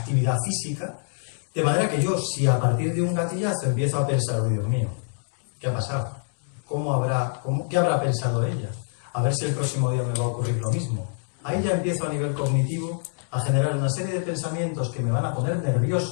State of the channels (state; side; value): silent; right; digital silence